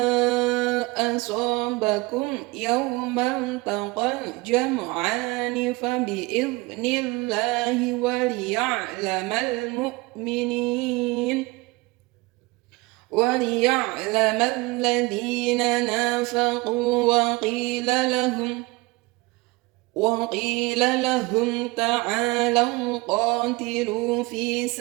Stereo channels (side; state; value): left; quieter; 23.6 dB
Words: asabakum yawmal taqal jam'ani fa bi'idhnillahi wa liya'lamal mu'minin وليعلم الذين نافقوا وقيل لهم تعالوا قاتلوا في